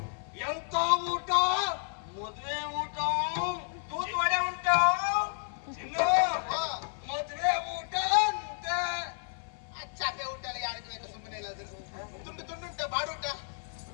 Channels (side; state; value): right; silent; 57 dB below the other